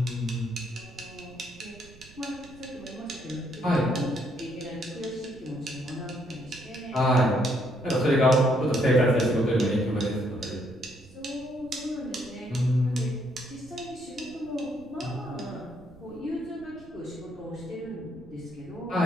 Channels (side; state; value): right; noise; rumble, 22 dB below the sound